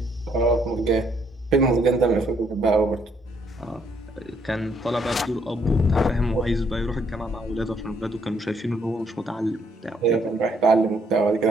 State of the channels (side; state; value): both; normal; correlation 0.69